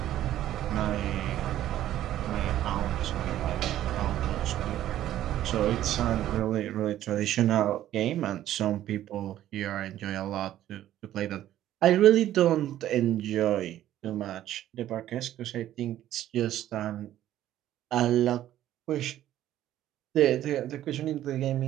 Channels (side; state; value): left; quieter; 12.7 dB